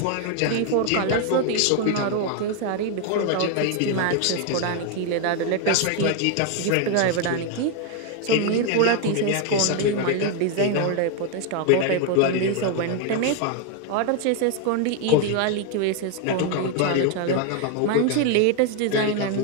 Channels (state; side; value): different; both; correlation 0.01